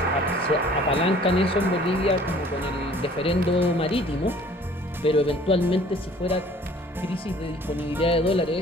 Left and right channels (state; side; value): normal; both; correlation 0.53